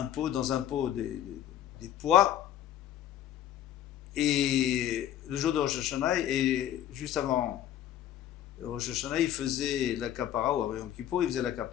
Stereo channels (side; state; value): right; quieter; 11.6 dB